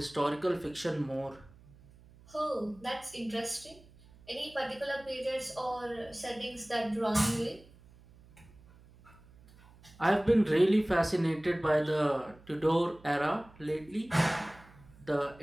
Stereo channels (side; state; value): right; noise; hum, 24 dB below the sound